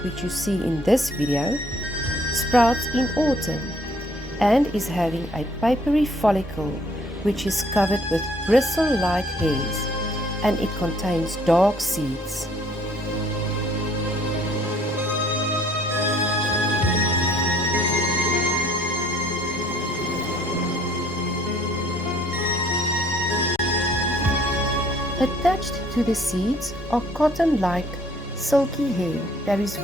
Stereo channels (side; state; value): both; normal; correlation 0.61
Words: which you see in this video, sprouts in autumn and is having a papery follicle which is covered with bristle-like hairs, and it contains dark seeds. Attached to the seeds are cotton-like silky hair that is